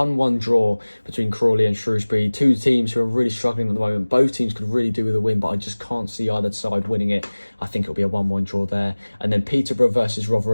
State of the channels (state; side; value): inverted; both; correlation -1.00